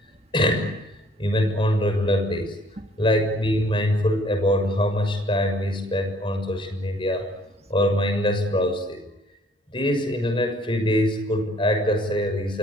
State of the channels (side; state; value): both; normal; correlation 0.59